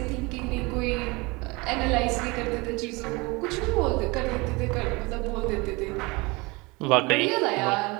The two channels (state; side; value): quieter; left; 25.3 dB